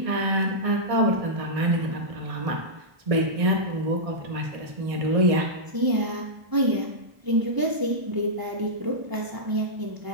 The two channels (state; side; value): late; left; 1.0 ms